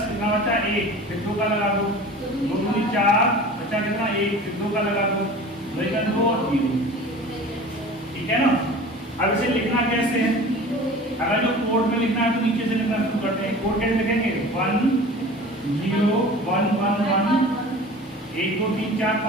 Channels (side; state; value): both; normal; correlation 0.40